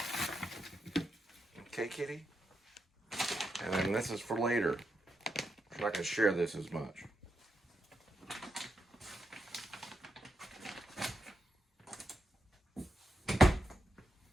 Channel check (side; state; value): both; normal; correlation 0.85